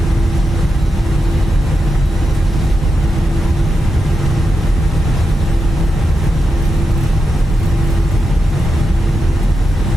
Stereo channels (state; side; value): normal; both; correlation 0.87